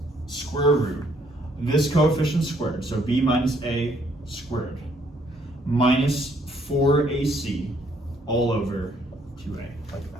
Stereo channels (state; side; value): normal; both; correlation 0.67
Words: square root this coefficient squared, so b minus a squared, minus 4ac all over 2a, like